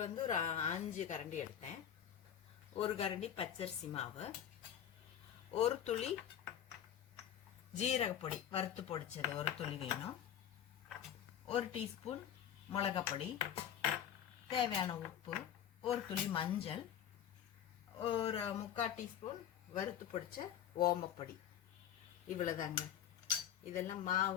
ஒரு 5 கரண்டி எடுத்தேன். ஒரு கரண்டி பச்சரிசி மாவு, ஒரு துளி ஜீரகப்பொடி வறுத்து பொடிச்சது ஒரு துளி வேணும், ஒரு டீஸ்பூன் மிளகாய் பொடி, தேவையான உப்பு, ஒரு துளி மஞ்சள், ஒரு 3/4 டீஸ்பூன் வறுத்து பொடிச்ச ஓமப்பொடி. இவ்வளவுதாங்க. இதெல்லாம்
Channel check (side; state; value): right; quieter; 9.8 dB